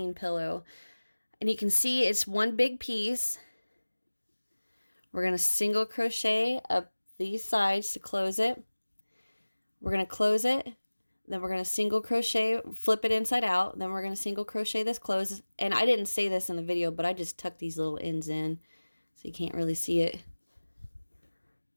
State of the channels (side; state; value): both; inverted; correlation -1.00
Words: pillow. And you can see it's one big piece. We're going to single crochet up these sides to close it. We're going to close it, then we're going to single crochet, flip it inside out, then we're going to single crochet this close. And I didn't say this in the video, but I just tucked these little ends in so you can't really see it.